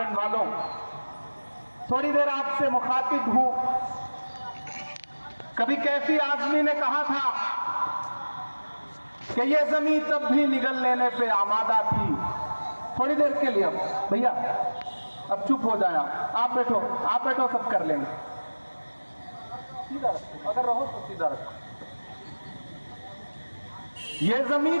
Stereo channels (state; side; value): inverted; both; correlation -1.00